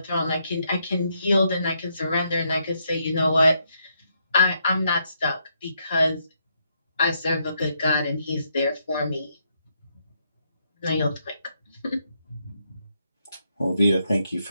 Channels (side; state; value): both; inverted; correlation -0.77